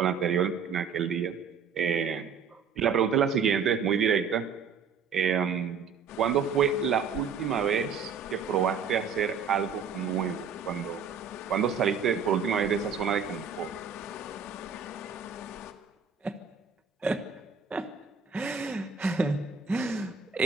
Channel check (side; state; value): left; quieter; 6.0 dB